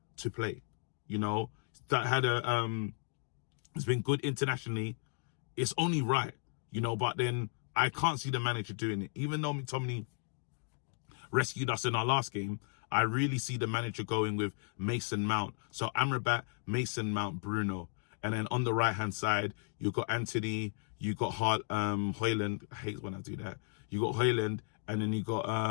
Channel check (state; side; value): silent; right; 55 dB below the other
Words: to play. That had it's been good internationally. It's only right, but then I can't see the manager doing it. Even though McTominay rescued us in our last game, I really see the manager going with Mason Mount. So Amrabat, Mason Mount, Bruno. And then on the right-hand side, you got Anthony, you got Højlund. I hate when I do that. You got Højlund, and then you got